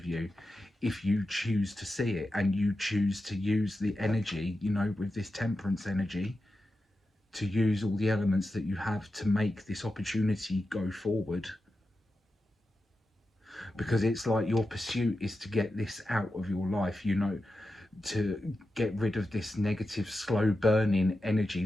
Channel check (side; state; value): both; normal; correlation 0.90